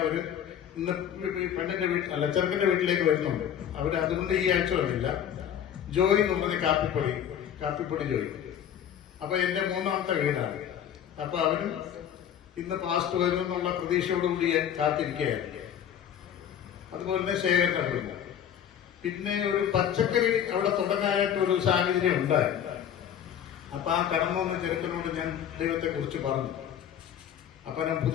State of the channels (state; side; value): quieter; right; 9.4 dB